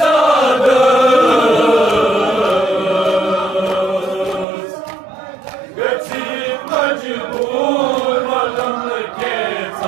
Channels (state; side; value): drops out; left; at 4.5 s